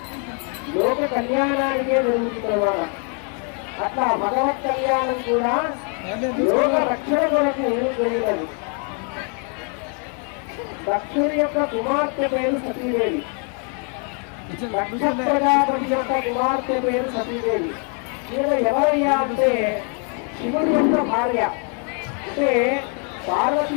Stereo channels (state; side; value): quieter; right; 38.2 dB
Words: లోక కళ్యాణానికే జరుగుతుంది అన్నమాట. అట్లా భగవత్ కళ్యాణం కూడా లోక రక్షణ కొరకు జరిగినది. దక్షుడి యొక్క కుమార్తె పేరు సతీదేవి. దక్ష ప్రజాపతి యొక్క కుమార్తె పేరు సతీదేవి. ఈమె ఎవరయ్యా అంటే శివుడి యొక్క భార్య. అంటే